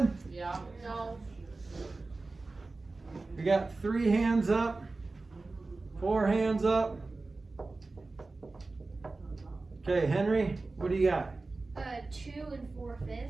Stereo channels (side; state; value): left; quieter; 3.5 dB